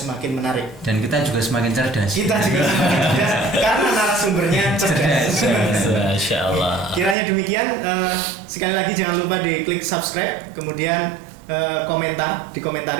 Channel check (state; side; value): drops out; left; at 7.2 s